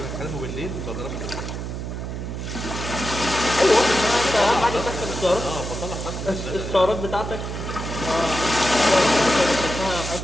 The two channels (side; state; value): right; noise; hum, 6 dB below the sound